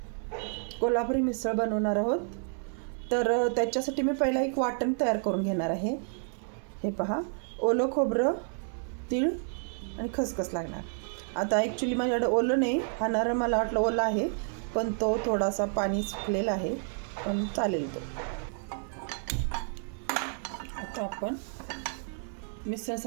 कोल्हापुरी मिसळ बनवणार आहोत. तर त्याच्यासाठी मी पहिला एक वाटण तयार करून घेणार आहे. हे पहा, ओलं खोबरं, तीळ आणि खसखस लागणार. आता ॲक्च्युली माझ्याकडे ओलं नाही, हा नारळ मला वाटलं ओलं आहे, पण तो थोडासा पाणी सुकलेला आहे, पण चालेल तो. आता आपण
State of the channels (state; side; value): silent; left; 58 dB below the other